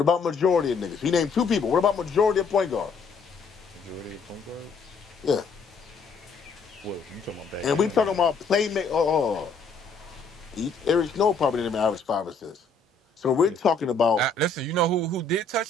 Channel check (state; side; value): quieter; right; 4.3 dB